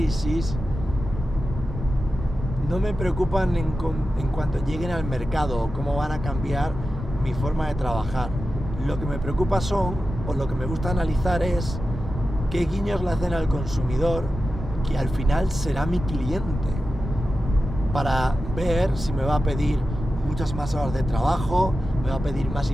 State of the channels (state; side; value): normal; both; correlation 0.93